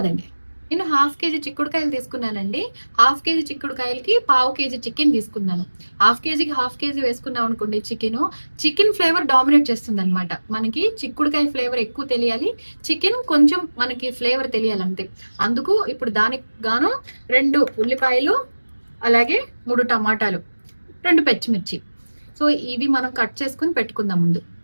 నేను హాఫ్ కేజీ చిక్కుడుకాయలు తీసుకున్నానండి. హాఫ్ కేజీ చిక్కుడుకాయలకి పావు కేజీ చికెన్ తీసుకున్నాను. హాఫ్ కేజీకి హాఫ్ కేజీ వేసుకున్నాం అనుకోండి, చికెన్ ఫ్లేవర్ డామినేట్ చేస్తుంది అనమాట. మనకి చిక్కుడుకాయ ఫ్లేవర్ ఎక్కువ తెలియాలి, చికెన్ కొంచెం మనకి ఫ్లేవర్ తెలియాలి అంతే. అందుకు ఇప్పుడు దానికి గాను 2 ఉల్లిపాయలు, అలాగే 3 టమాటాలు, 2 పచ్చిమిర్చి. సో ఇవి మనం కట్ చేసుకుని పెట్టుకుందాం ముందు.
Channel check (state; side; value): inverted; both; correlation -1.00